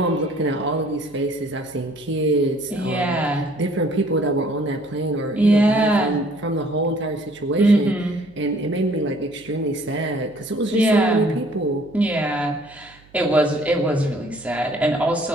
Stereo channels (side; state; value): right; noise; hum, 27 dB below the sound